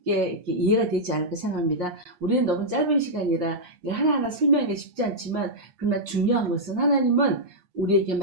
이렇게 이해가 되지 않을까 생각합니다. 우리는 너무 짧은 시간이라 하나하나 설명하기 쉽지 않지만, 그러나 중요한 것은 하나님은 우리에게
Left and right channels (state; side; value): late; left; 8.5 ms